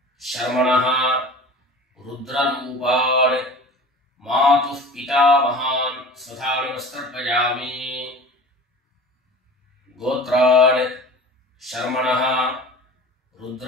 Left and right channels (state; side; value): normal; both; correlation 0.39